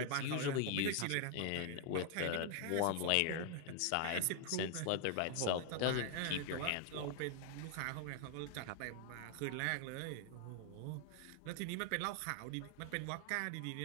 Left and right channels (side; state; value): both; different; correlation 0.00